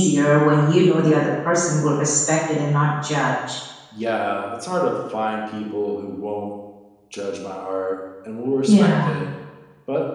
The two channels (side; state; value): both; identical; correlation 1.00